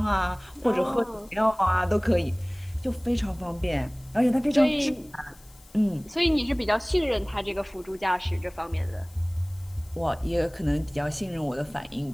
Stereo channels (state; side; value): noise; left; hiss, 27 dB below the sound